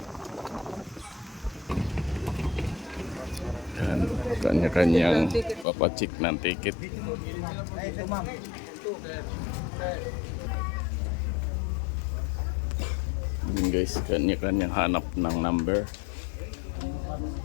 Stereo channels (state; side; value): drops out; right; at 5.7 s